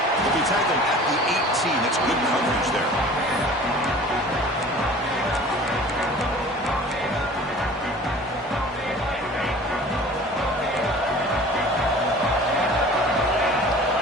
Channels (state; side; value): normal; both; correlation 0.44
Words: He'll be tackled at the 18. That's good coverage there.